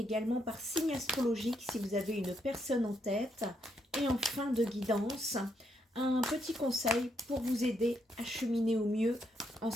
par signe astrologique si vous avez une personne en tête. Et en fin de guidance, un petit conseil pour vous aider à cheminer au mieux en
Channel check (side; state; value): both; normal; correlation 0.77